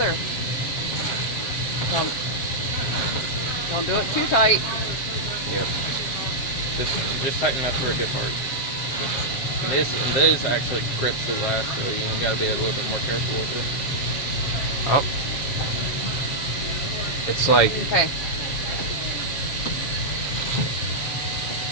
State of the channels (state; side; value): late; right; 7.4 ms